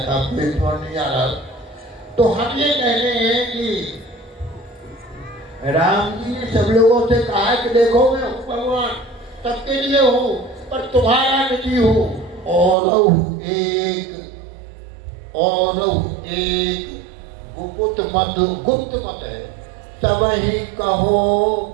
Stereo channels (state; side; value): drops out; left; at 12.8 s